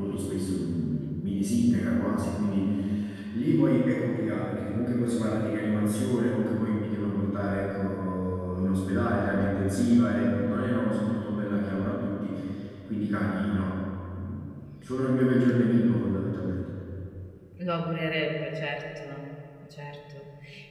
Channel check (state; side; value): identical; both; correlation 1.00